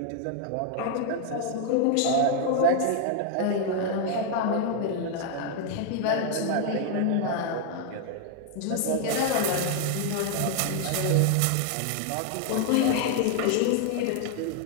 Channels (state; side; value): different; both; correlation 0.00